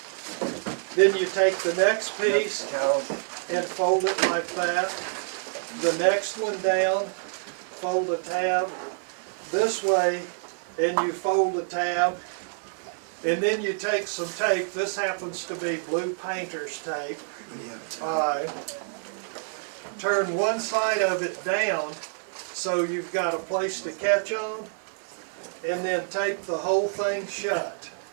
Then you take the next piece and fold it like that. The next one down, fold a tab this way, and you fold a tab. And then you take some tape. This happens to be blue painter's tape. Turn one side of it down so you've got a place to catch on, and then tape the whole thing shut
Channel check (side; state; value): left; silent; 60 dB below the other